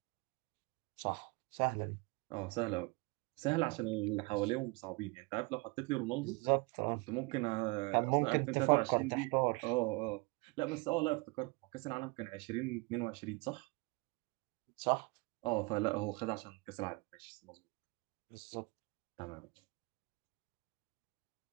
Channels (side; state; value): left; quieter; 27.2 dB